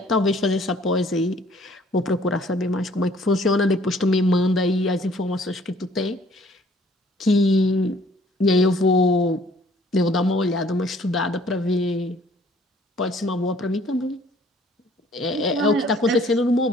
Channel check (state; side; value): normal; both; correlation 0.58